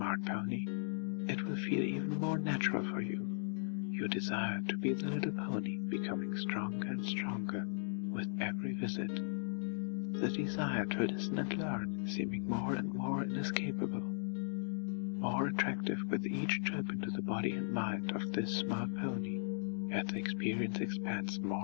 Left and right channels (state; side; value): silent; right; digital silence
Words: pony, it will feel even more natural for you. Your desire to be the little pony becoming stronger and stronger with every visit. The desire to listen and learn seeming more and more inescapable. More attractive with each trip into the body and mind of this smart pony, as the experience expands